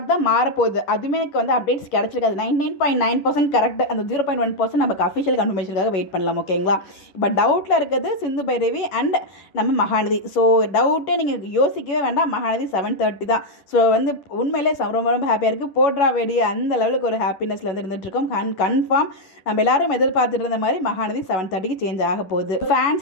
தான் மாறப்போகுது. அதுவுமே எனக்கு அப்டேட்ஸ் கிடைச்சிருக்காது. 99.9% கரெக்ட். அந்த 0.1% நமக்கு அஃபிஷியல் கன்ஃபர்மேஷனுக்காக வெயிட் பண்ணலாம். ஓகேங்களா, இப்போ டவுட்டில் இருக்கிறது சிந்து பைரவி அண்ட் நம்ம மகாநதி. ஸோ டவுட்டே நீங்கள் யோசிக்கவே வேண்டாம், மகாநதி 7:30 தான். ஸோ உண்மையிலே ரொம்ப ரொம்ப ஹாப்பியாக இருக்குது. போட்ரா வெடி அந்த லெவலுக்கு ஒரு ஹாப்பினஸில் இருந்துகிட்ருக்கோம். கன்ஃபார்ம் நம்ம எல்லாரும் எதிர்பார்த்துட்டு இருந்த மாதிரி மகாநதி 7:30 சேஞ்ச் ஆக போகுது.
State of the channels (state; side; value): late; right; 10 ms